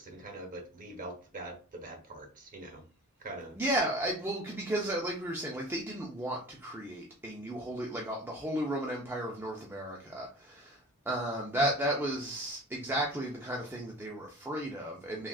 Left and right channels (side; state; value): both; normal; correlation 0.41